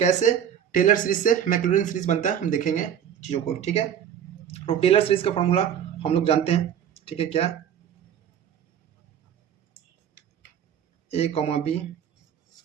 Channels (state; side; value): quieter; left; 9.0 dB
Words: टेलर सीरीज से मैक्लॉरिन सीरीज बनता है हम देखेंगे चीज़ों को, ठीक है। तो टेलर सीरीज का फॉर्मूला हम लोग जानते हैं, ठीक है, क्या, a, b